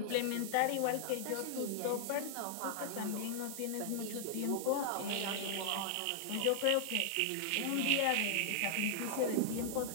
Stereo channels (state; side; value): different; both; correlation 0.00